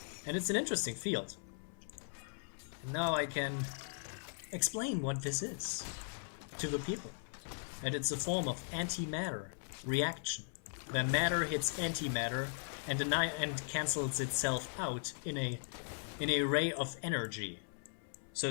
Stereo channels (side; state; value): right; silent; 52 dB below the other